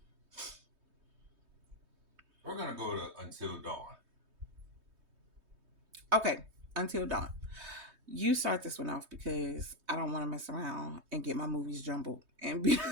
We're gonna go to Until Dawn. Okay, Until Dawn. You start this one off because I don't want to mess around and get my movies jumbled and be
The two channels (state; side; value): late; left; 3.2 ms